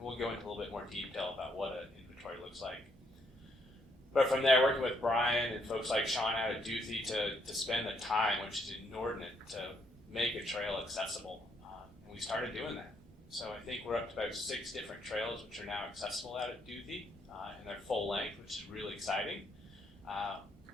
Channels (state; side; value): normal; both; correlation 0.73